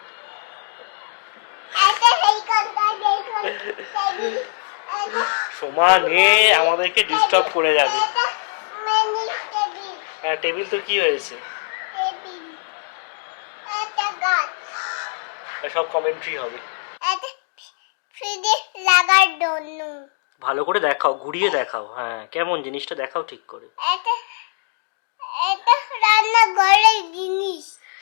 সমানে আমাদেরকে ডিস্টার্ব করে যাবে। হ্যাঁ, টেবিল তো কি হয়েছে, সব কমেন্ট্রি হবে। ভালো করে দেখাও, ঘুরিয়ে দেখাও। হ্যাঁ, কেমন জিনিসটা দেখাও ঠিক করে।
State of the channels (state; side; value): silent; right; digital silence